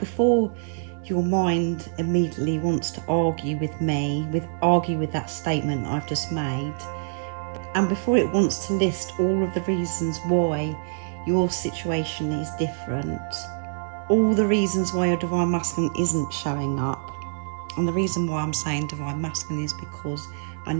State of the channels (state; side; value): silent; left; digital silence